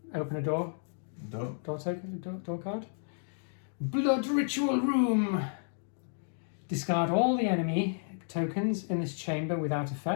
open a door. Door card. Blood Ritual Room. Discard all the enemy tokens in this chamber without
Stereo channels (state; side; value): silent; right; digital silence